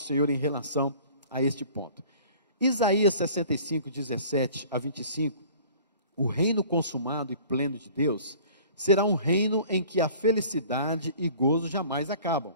em relação a este ponto. Isaías 65, 17 a 25, o reino consumado e pleno de Deus será um reino em que a felicidade e gozo jamais acabam,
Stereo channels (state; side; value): inverted; both; correlation -0.48